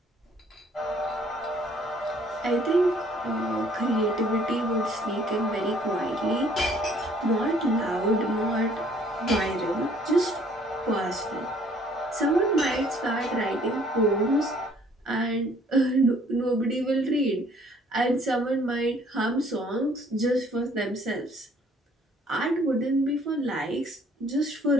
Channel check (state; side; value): normal; both; correlation 0.60